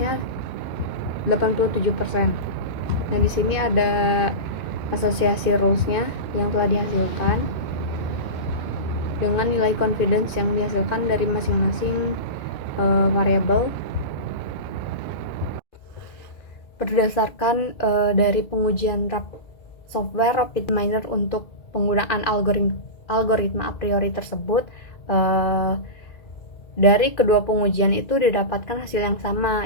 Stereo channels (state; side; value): late; right; 2.4 ms